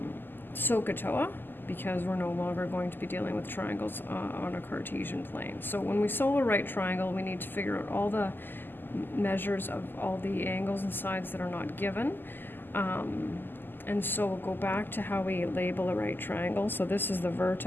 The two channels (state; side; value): late; right; 0.093 ms